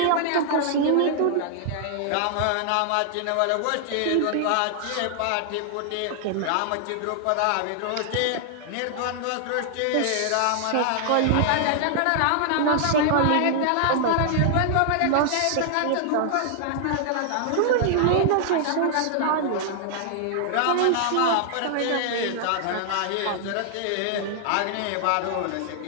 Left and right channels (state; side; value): different; both; correlation -0.01